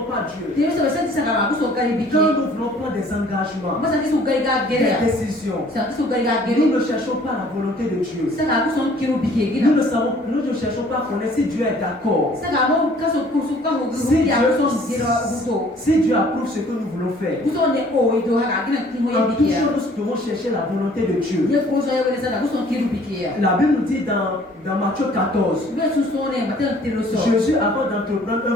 pas Dieu. Quand nous voulons prendre des engagements, des décisions, nous ne cherchons pas la volonté de Dieu. Nous ne cherchons pas à connaître si Dieu est d'accord. Si Dieu approuve ce que nous voulons faire. En toute chose, nous devons chercher la volonté de Dieu. La Bible nous dit dans Matthieu 14, Jésus, avant d'entreprendre un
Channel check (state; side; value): normal; both; correlation 0.56